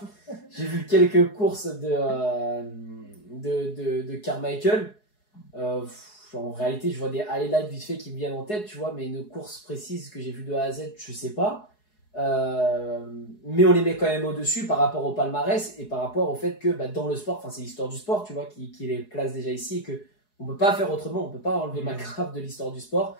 J'ai vu quelques courses de Carmichael. En réalité je vois des highlights vite fait qui me viennent en tête, tu vois, mais une course précise que j'ai vue de A à Z je sais pas. Mais on les met quand même au-dessus par rapport au palmarès et par rapport au fait que dans le sport, c'est l'histoire du sport, tu vois, qui les place déjà ici, et que on peut pas faire autrement, on peut pas enlever McGrath de l'histoire du sport,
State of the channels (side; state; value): right; late; 4.8 ms